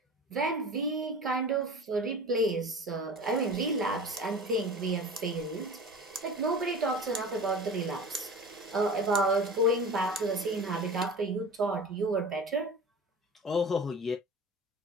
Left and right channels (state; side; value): normal; both; correlation 0.36